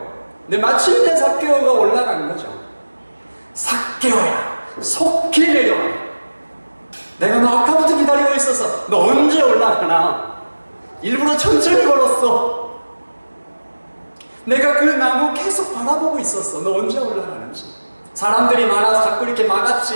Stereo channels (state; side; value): inverted; both; correlation -1.00